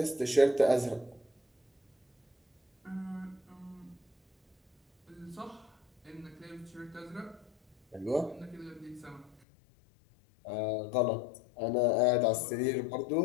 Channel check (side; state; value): right; drops out; at 9.4 s